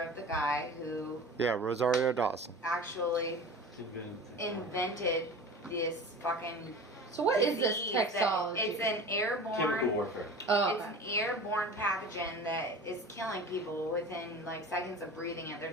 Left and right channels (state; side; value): normal; both; correlation 0.36